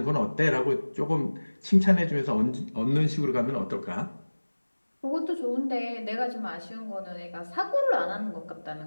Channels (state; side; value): inverted; both; correlation -1.00